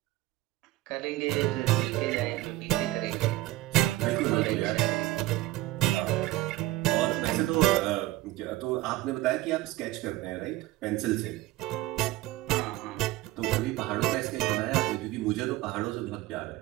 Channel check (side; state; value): left; quieter; 16.7 dB